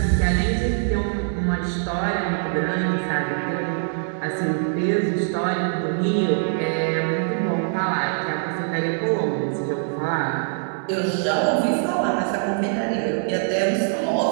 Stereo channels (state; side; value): silent; left; 63 dB below the other